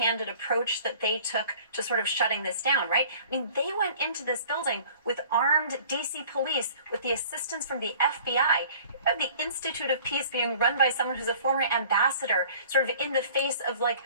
approach that they took to sort of shutting this down, right? I mean, they went into this building with armed DC police, with the assistance from the FBI. You have the Institute of Peace being run by someone who's a former ambassador, sort of in the face of like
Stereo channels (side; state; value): both; inverted; correlation -0.49